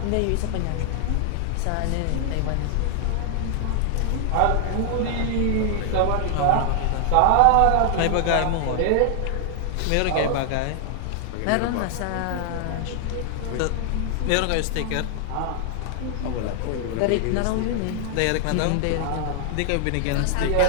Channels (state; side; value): different; both; correlation 0.00